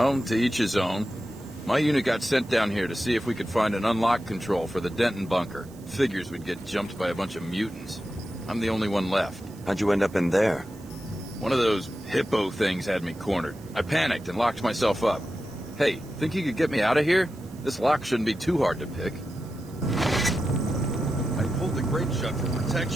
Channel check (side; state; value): right; noise; hiss, 25 dB below the sound